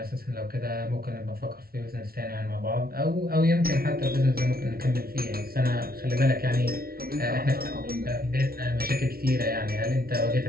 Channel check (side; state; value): left; late; 0.44 ms